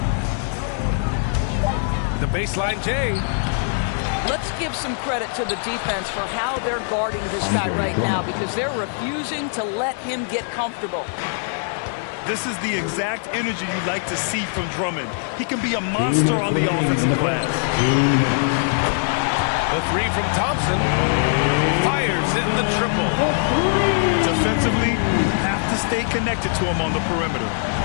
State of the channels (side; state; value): right; silent; 64 dB below the other